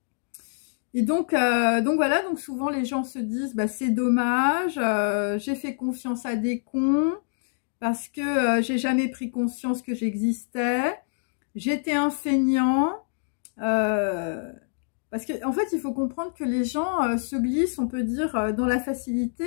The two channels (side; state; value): right; silent; digital silence